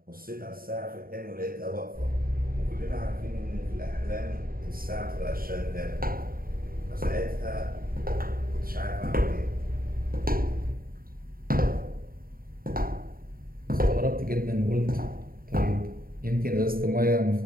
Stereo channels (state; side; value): late; left; 0.42 ms